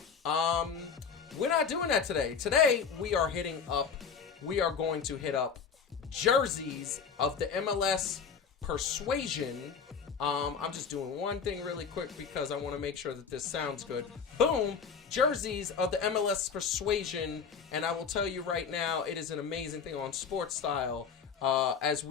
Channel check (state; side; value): quieter; right; 6.3 dB